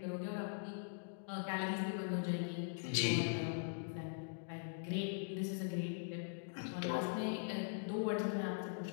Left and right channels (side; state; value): right; silent; digital silence